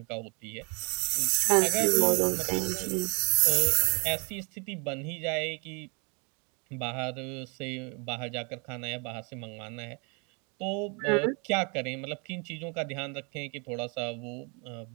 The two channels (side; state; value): left; quieter; 34.0 dB